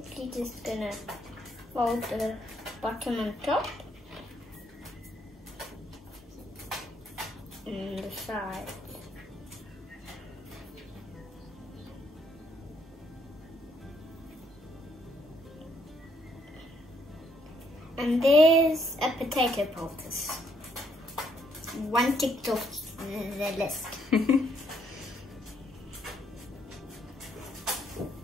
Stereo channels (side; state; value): both; normal; correlation 0.70